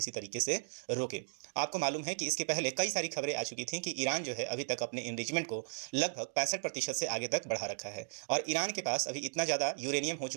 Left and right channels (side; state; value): left; silent; digital silence